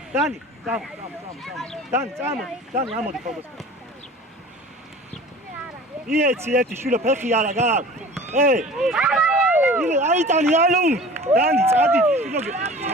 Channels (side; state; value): both; normal; correlation 0.42